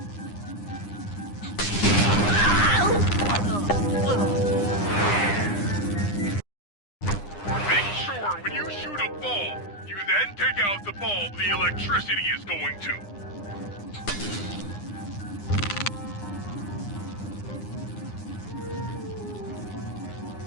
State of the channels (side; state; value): right; late; 9.8 ms